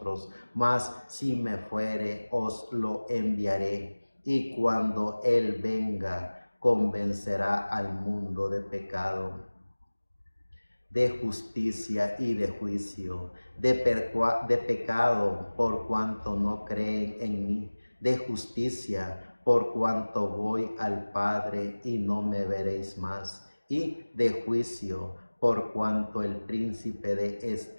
mas si me fuere, os lo enviaré. Y cuando Él venga, convencerá al mundo de pecado, de justicia y de juicio, de pecado por cuanto no creen en mí, de justicia por cuanto voy al Padre y no me veréis más, y de juicio por cuanto el príncipe de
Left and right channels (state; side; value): inverted; both; correlation -1.00